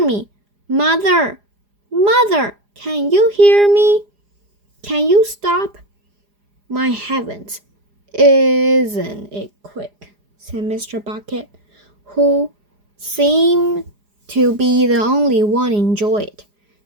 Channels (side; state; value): left; late; 4.9 ms